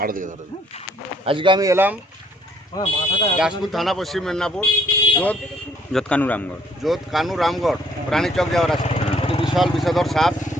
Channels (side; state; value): both; normal; correlation 0.65